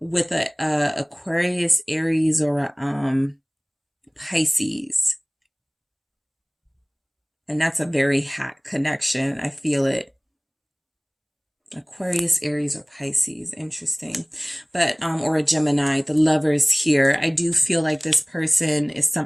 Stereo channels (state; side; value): identical; both; correlation 1.00